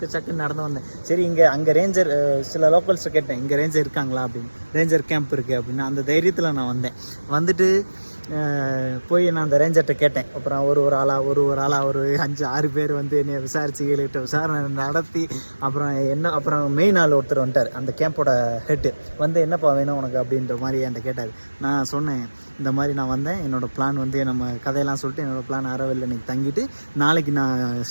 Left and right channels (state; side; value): inverted; both; correlation -1.00